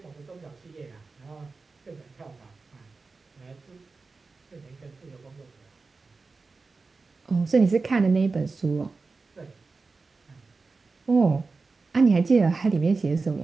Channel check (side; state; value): left; quieter; 4.1 dB